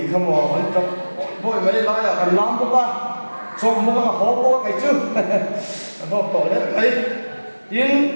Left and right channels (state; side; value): inverted; both; correlation -1.00